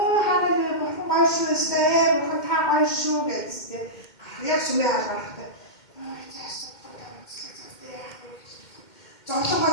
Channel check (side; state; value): right; late; 2.1 ms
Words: бурхан гоё шүү дээ. Бурхан та гоё шүү гэсэн. Яг сүмээ харахад зовлонгоо